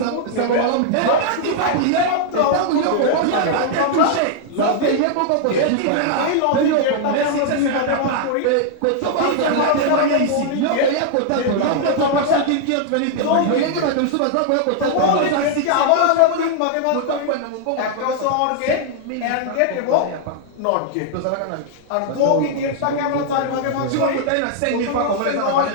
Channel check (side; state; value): both; different; correlation -0.01